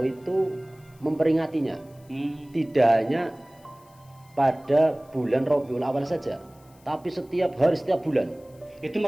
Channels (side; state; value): left; noise; hiss, 30 dB below the sound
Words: itu memperingatinya. Tidak hanya pada bulan Rabiul Awal saja, tapi setiap hari, setiap bulan. Itu